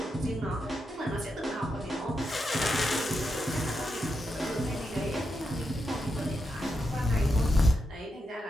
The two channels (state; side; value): normal; both; correlation 0.85